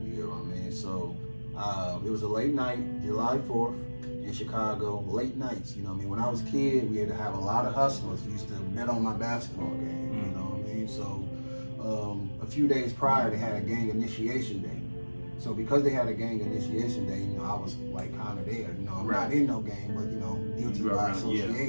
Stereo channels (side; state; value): both; inverted; correlation -1.00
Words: You get what I mean? So It was a late night, July 4th in Chicago, late nights, you know what I mean? When I was a kid, we had to have a lot of hustlers. Used to bet on my basketball game, you know what I mean? So a few days prior, they had a gang initiation day. So because they had a gang initiation day, you know, I was like kind of there. You know, I'm not in no gang, but you know, guilty by